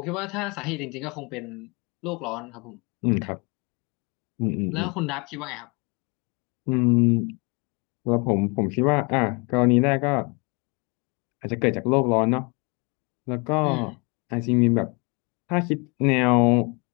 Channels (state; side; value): quieter; right; 30.8 dB